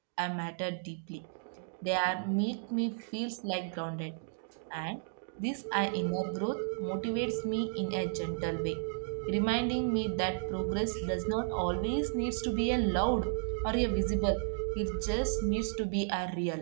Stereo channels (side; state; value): left; silent; digital silence